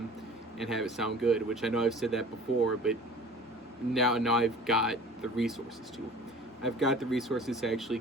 and have it sound good, which I know I've said that before, but now I've got the resources to. I've got the resources to actually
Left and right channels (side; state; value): both; normal; correlation 0.44